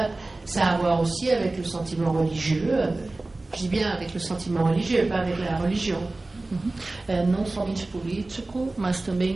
Ça a à voir aussi avec le sentiment religieux. Je dis bien avec le sentiment religieux, pas avec la religion. Não somente político, mas também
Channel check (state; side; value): quieter; left; 3.1 dB